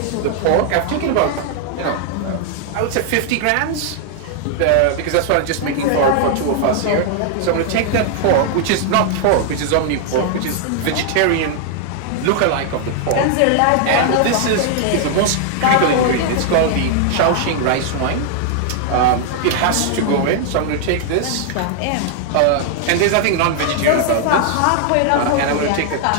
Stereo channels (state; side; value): different; both; correlation 0.00